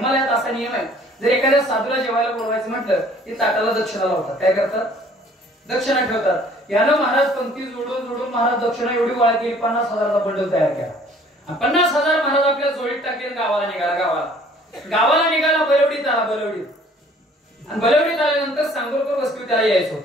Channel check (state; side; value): normal; both; correlation 0.56